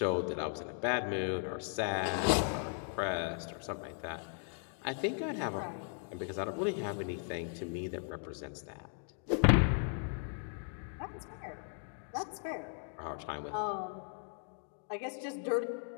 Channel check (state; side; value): silent; right; 53 dB below the other